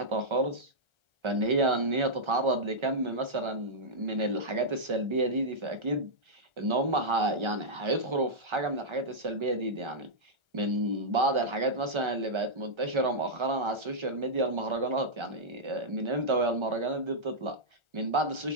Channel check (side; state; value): left; late; 1.3 ms